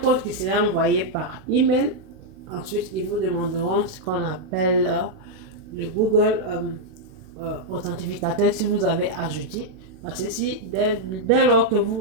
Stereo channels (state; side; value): late; left; 32 ms